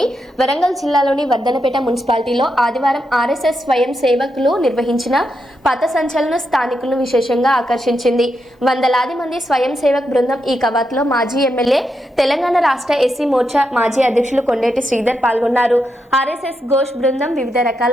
వరంగల్ జిల్లాలోని వర్ధనపేట మున్సిపాలిటీలో ఆదివారం ఆర్ఎస్ఎస్ స్వయం సేవకులు నిర్వహించిన పథ సంచలనం స్థానికులను విశేషంగా ఆకర్షించింది. వందలాది మంది స్వయం సేవక్ బృందం ఈ కవాతులో మాజీ ఎమ్మెల్యే, తెలంగాణ రాష్ట్ర ఎస్సీ మోర్చా మాజీ అధ్యక్షులు కొండేటి శ్రీధర్ పాల్గొన్నారు. ఆర్ఎస్ఎస్ ఘోష్ బృందం వివిధ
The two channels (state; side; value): normal; both; correlation 0.84